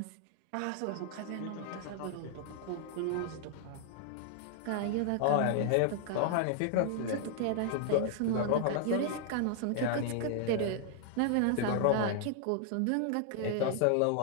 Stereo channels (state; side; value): different; both; correlation -0.01